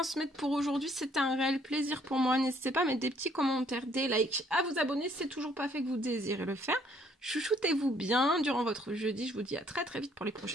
pour aujourd'hui. C'était un réel plaisir pour moi. N'hésitez pas à mettre des petits commentaires, des likes, à vous abonner si c'est toujours pas fait que vous désirez le faire. Chouchoutez-vous bien durant votre jeudi. Je vous dis à très très vite pour les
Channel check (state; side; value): normal; both; correlation 0.64